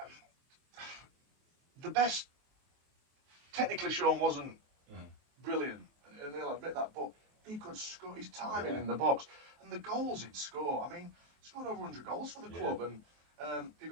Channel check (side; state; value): left; late; 23 ms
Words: the best. Technically, Sean wasn't brilliant, and he'll admit that, but he could score. His timing in the box and the goals he'd score. I mean, he scored over 100 goals for the club, and he